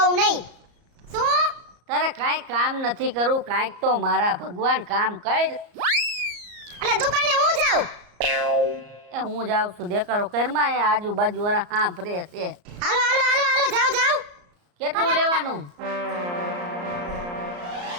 નહીં। શું? તારે કાંઈ કામ નથી કરવું, કાંઈક તો મારા ભગવાન કામ કર। એટલે દુકાને હું જાઉં? એ હું જાઉં છું, દેખારો કરમાં એ આજુબાજુ વાળા હા ફરે છે। હાલો હાલો હાલો હાલો જાઓ જાઓ। કેટલું લેવાનું?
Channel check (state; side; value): late; left; 34 ms